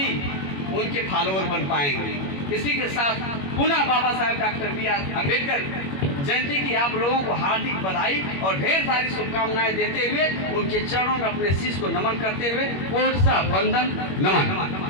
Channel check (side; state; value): right; late; 21 ms